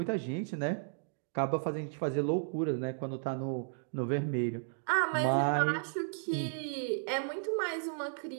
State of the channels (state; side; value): silent; left; digital silence